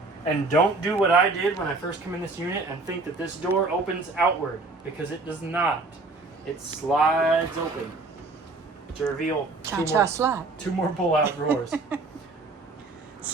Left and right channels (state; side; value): quieter; left; 3.5 dB